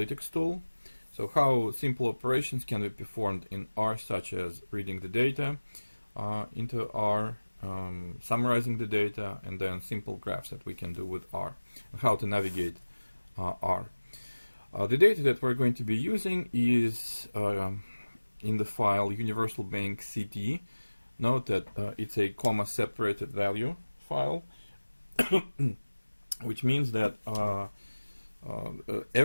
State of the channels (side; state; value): both; inverted; correlation -1.00